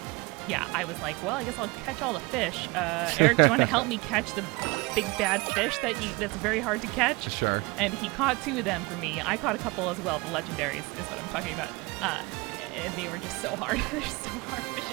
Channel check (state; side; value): quieter; left; 25.3 dB